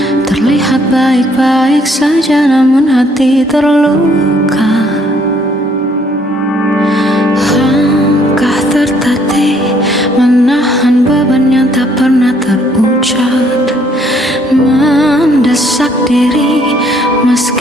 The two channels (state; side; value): normal; both; correlation 0.65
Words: Terlihat baik-baik saja namun hati terluka. Langkah tertatih menahan beban yang tak pernah terucap, mendesak diri